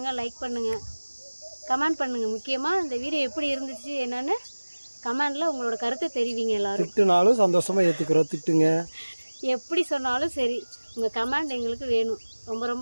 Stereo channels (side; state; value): both; inverted; correlation -1.00